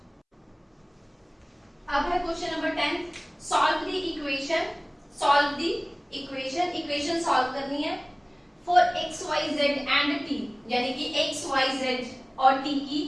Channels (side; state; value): both; identical; correlation 1.00